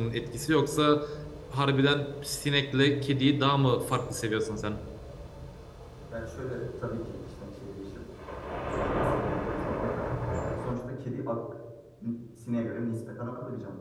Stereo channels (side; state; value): both; identical; correlation 1.00